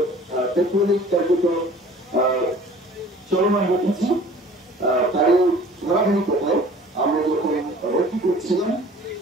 টেকনিক কার্যক্রম চলমান রেখেছি। তারই ধারাবাহিকতায় আমরা যখন ভর্তি করছিলাম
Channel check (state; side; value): normal; both; correlation 0.49